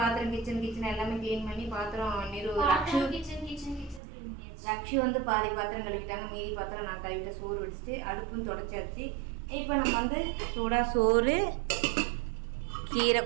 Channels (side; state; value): left; drops out; at 4.0 s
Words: கிச்சன் எல்லாமே க்ளீன் பண்ணி பாத்திரம் ரக்ஷு வந்து பாதி பாத்திரம் கழுவிட்டாங்க. மீதி பாத்திரம் நான் கழுவிட்டு சோறு வடிச்சிட்டு அடுப்பும் தொடச்சாச்சு. இப்போ நம்ம வந்து சூடாக சோறு, கீரை